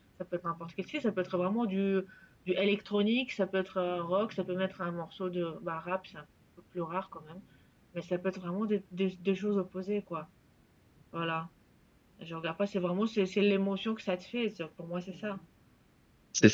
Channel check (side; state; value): both; identical; correlation 1.00